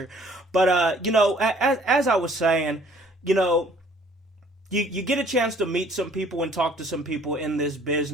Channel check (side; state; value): both; normal; correlation 0.58